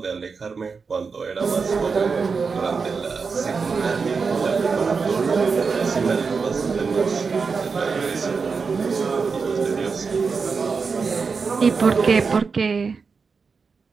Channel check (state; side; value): quieter; left; 5.1 dB